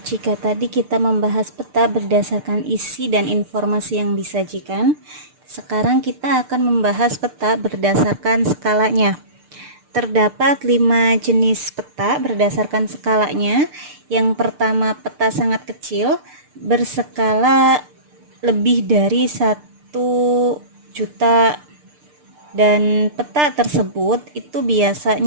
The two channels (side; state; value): left; late; 6.7 ms